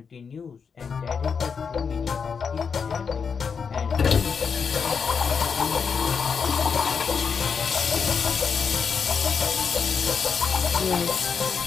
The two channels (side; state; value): right; quieter; 6.0 dB